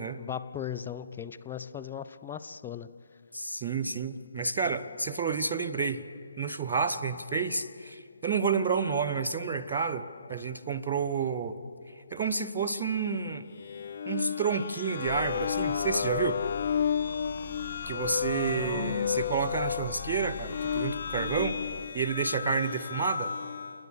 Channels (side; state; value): both; inverted; correlation -0.54